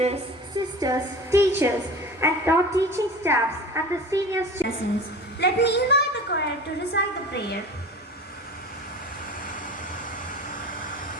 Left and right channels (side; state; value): both; normal; correlation 0.36